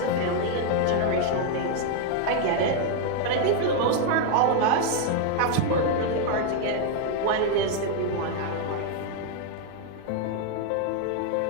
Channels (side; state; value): both; different; correlation 0.00